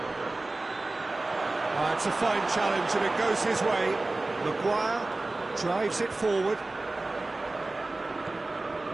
It's a fine challenge and it goes his way. Maguire drives it forward.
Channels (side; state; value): left; quieter; 3.1 dB